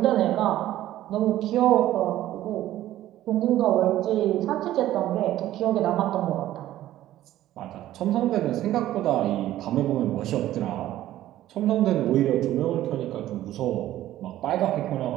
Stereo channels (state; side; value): quieter; left; 13.8 dB